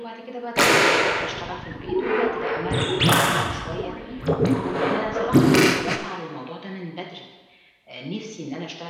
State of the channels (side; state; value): both; identical; correlation 1.00